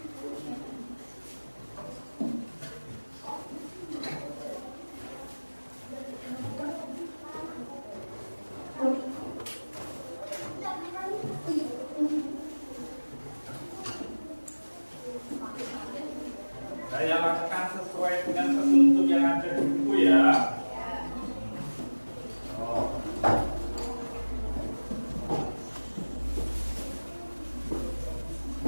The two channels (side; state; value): both; inverted; correlation -1.00